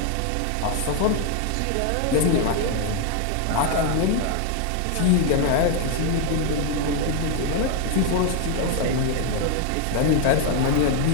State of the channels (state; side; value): different; both; correlation 0.01